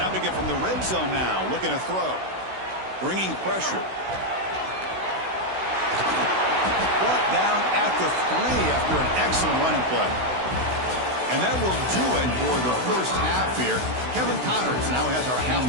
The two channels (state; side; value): late; left; 16 ms